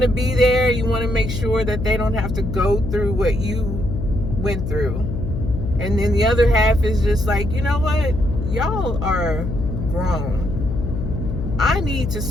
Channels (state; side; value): noise; left; hum, 4 dB below the sound